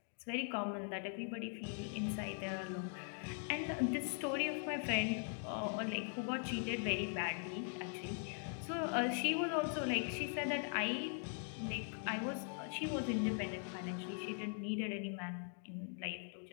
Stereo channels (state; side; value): silent; right; 50 dB below the other